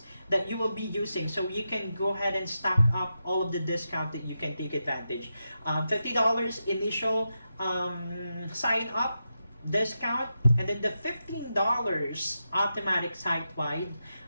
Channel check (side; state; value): both; inverted; correlation -0.88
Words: that you will be using, so you can go ahead and stack up all of the discount that you can take advantage. $50 initial sign up, discount, and then the $15 automatic site-wide